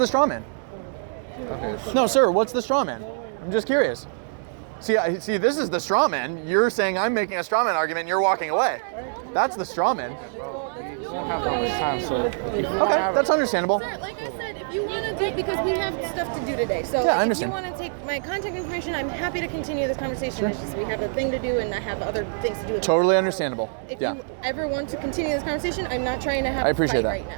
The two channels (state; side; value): silent; left; 62 dB below the other